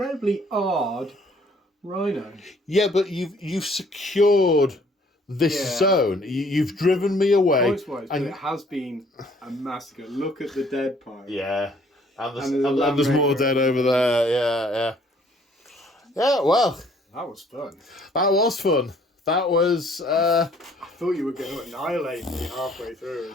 odd Rhino. Yeah, but you've secured this zone. You've driven me away. Points-wise, but it has been a massacre. Look at the dead pile. Yeah, and there's more dead over there. Yeah. Yeah, well. That was fun. That was fun. That was... I thought you were going to annihilate me halfway through.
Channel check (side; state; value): both; normal; correlation 0.60